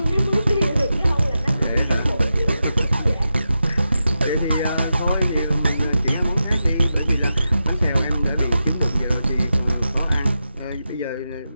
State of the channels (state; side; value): inverted; both; correlation -0.89